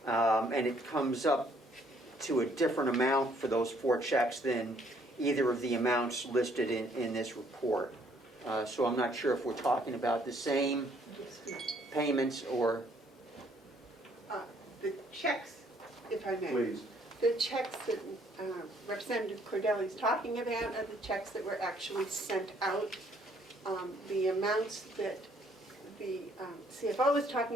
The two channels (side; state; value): both; normal; correlation 0.65